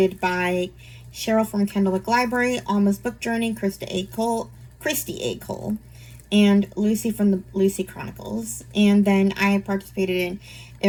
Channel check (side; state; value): both; identical; correlation 1.00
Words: by Cheryl from Kendallwick Library, Alma's Book Journey, Christy A. Cole, and Lucy from the Lucy Chronicles. And then I participated in